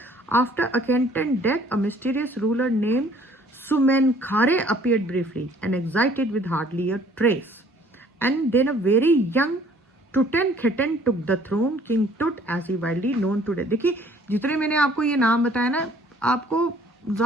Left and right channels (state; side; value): normal; both; correlation 0.57